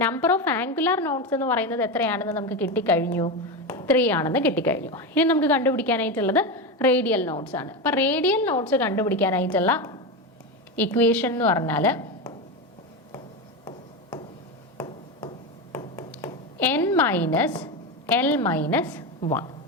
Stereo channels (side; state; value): both; normal; correlation 0.16